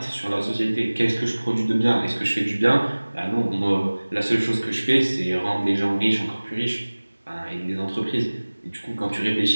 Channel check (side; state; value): both; inverted; correlation -1.00